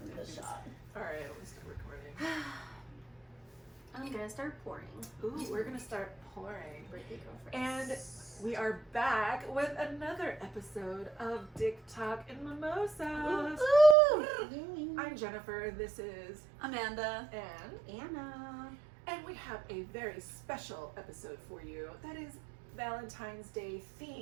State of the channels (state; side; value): drops out; left; at 14.0 s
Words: think the shot. Alright, let's start recording. I'm gonna start pouring. Ooh, we're gonna start pouring. Birthday girlfriend. And we are back with another episode of Dick Talk and Mimosas. Yay. I'm Jennifer, this is Amanda. Anne. Anna. And we have a very special episode for you that is Valentine's Day